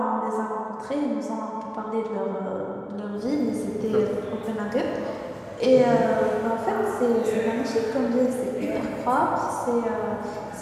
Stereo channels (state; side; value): identical; both; correlation 1.00